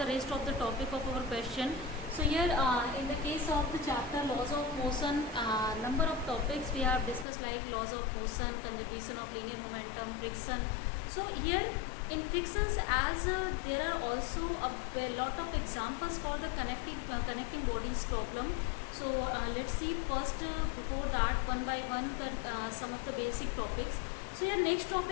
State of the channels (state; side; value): drops out; right; at 7.2 s